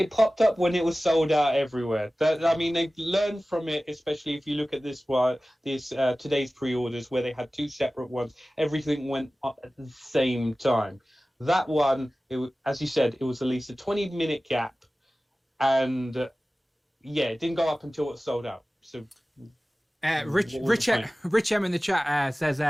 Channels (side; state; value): both; normal; correlation 0.97